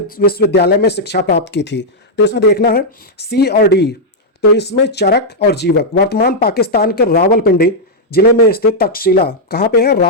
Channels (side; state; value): both; normal; correlation -0.04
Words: में शिक्षा प्राप्त की थी? तो इसमें देखना है सी और डी। तो इसमें चरक और जीवक। वर्तमान पाकिस्तान के रावलपिंडी जिले में स्थित तक्षशिला, कहाँ पे है?